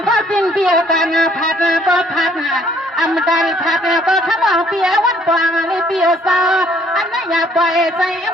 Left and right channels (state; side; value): normal; both; correlation 0.63